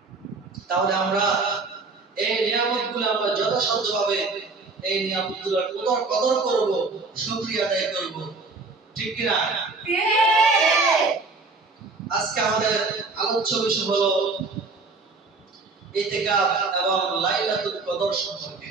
তাহলে আমরা এই নিয়ামতগুলো আমরা যথাসাধ্যভাবে এই নিয়ামতগুলোর কদর করব, শুকরিয়া আদায় করব, ঠিক কি না? আজকে আমাদের আলোচ্য বিষয় হলো ইতিকাফ এবং লাইলাতুল কদর সম্পর্কে।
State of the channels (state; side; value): quieter; left; 3.9 dB